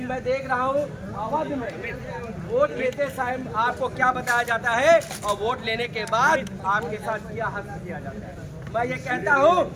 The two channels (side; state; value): both; identical; correlation 1.00